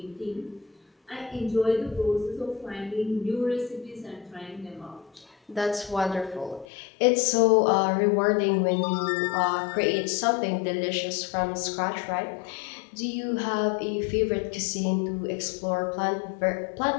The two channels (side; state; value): right; drops out; at 6.7 s